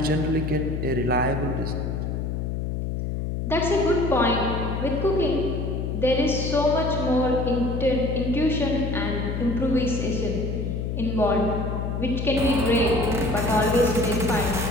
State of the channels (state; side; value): noise; left; hum, 2 dB below the sound